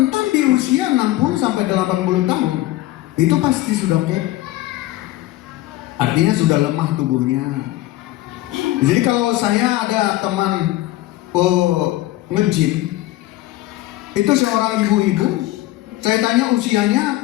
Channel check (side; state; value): right; quieter; 16.5 dB